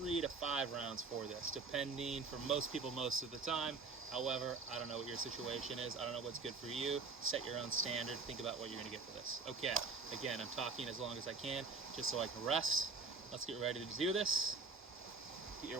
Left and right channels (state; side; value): quieter; left; 4.4 dB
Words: to 5 rounds for this, depending for most people most of the time. However, I don't know what your situation is. I don't know what's good for you. Set your own standard. Think about what you're going to get for this. Okay, again, I'm talking as long as I can, just so I can rest. Let's get ready to do this. Get your